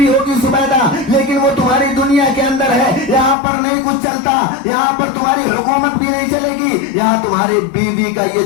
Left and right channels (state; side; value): drops out; right; at 3.4 s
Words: ہوگی زبیدہ, لیکن وہ تمہاری دنیا کے اندر ہے, یہاں پر نہیں کچھ چلتا, یہاں پر تمہاری حکومت بھی نہیں چلے گی, یہاں تمہاری بیوی کا یہ